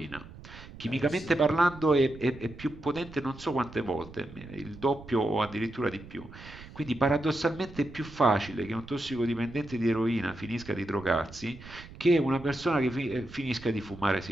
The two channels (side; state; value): right; noise; rumble, 17 dB below the sound